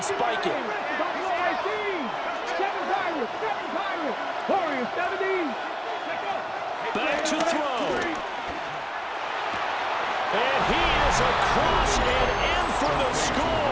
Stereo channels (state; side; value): identical; both; correlation 1.00